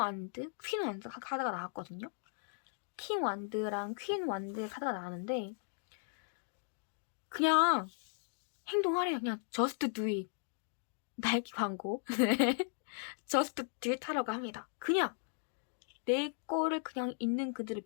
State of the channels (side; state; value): right; silent; digital silence